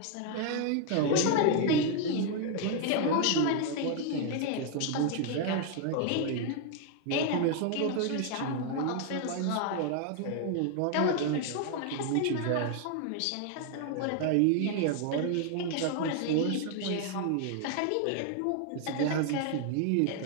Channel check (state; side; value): different; both; correlation 0.00